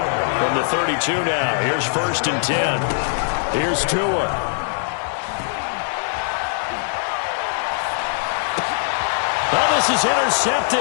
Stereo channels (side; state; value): right; silent; digital silence